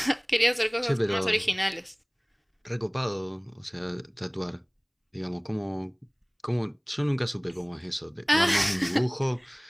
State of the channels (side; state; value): both; identical; correlation 1.00